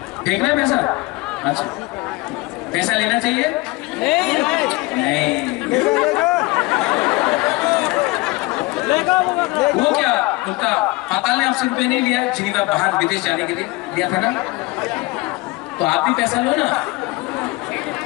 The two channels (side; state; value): right; quieter; 22.7 dB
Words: फेंकना है पैसा? अच्छा, पैसा लेना चाहिए? नहीं। वो क्या उनका पाताल ने आपसे रुपये नहीं लिया? जिनीवा बाहर विदेश जाने के लिए लिया था ना? तो आप भी पैसा लो ना।